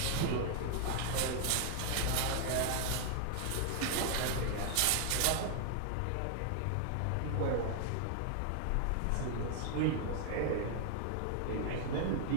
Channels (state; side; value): different; both; correlation 0.00